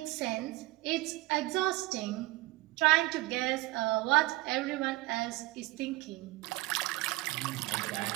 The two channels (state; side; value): quieter; left; 20.2 dB